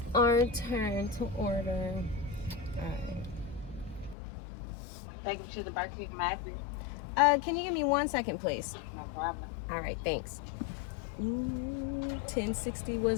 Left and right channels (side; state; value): right; drops out; at 4.2 s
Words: our turn to order. All right. Take you to the Barkeep Mac. Can you give me 1 second, please? No problem. All right, thanks. 1060